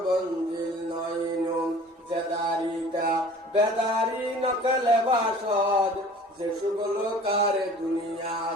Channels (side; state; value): both; normal; correlation 0.46